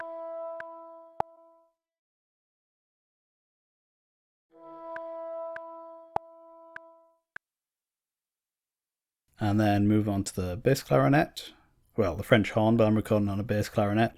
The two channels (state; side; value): identical; both; correlation 1.00